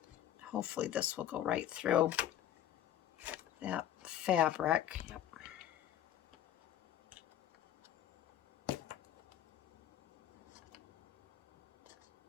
Hopefully this will go right through that fabric. Yep.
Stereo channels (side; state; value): right; quieter; 11.4 dB